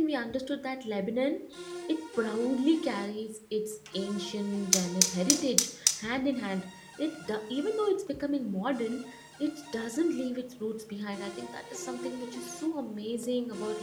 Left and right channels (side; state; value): both; identical; correlation 1.00